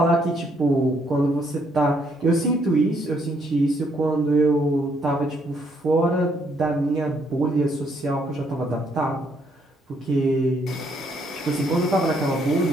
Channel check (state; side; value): normal; both; correlation 0.70